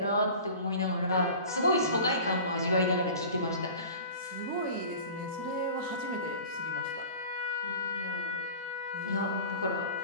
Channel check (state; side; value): inverted; both; correlation -0.39